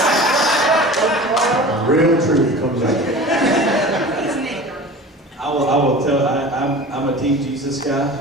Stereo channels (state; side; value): normal; both; correlation 0.37